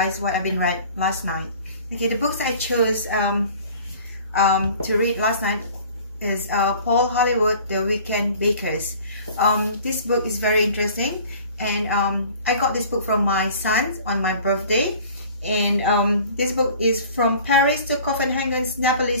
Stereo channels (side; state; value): both; inverted; correlation -0.47